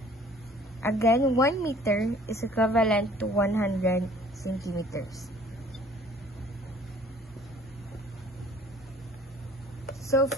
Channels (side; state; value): both; normal; correlation 0.53